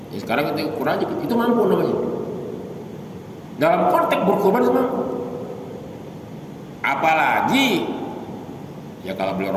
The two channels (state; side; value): identical; both; correlation 1.00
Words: Ya, sekarang kita ukur aja, itu mampu namanya. Dalam konteks berkorban itu mampu. Apalagi ya kalau beli